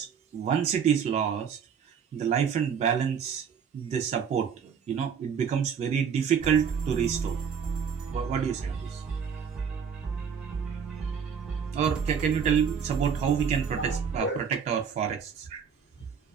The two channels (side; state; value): left; quieter; 7.0 dB